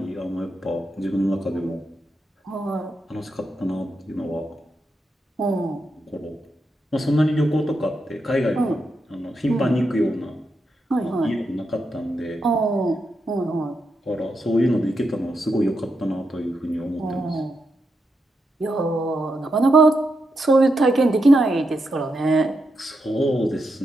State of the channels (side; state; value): both; normal; correlation 0.84